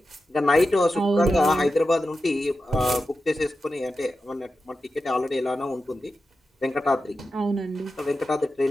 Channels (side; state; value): both; normal; correlation 0.91